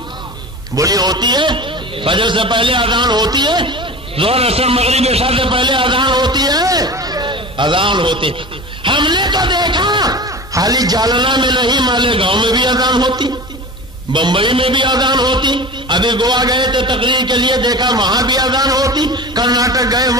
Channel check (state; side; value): normal; both; correlation 0.33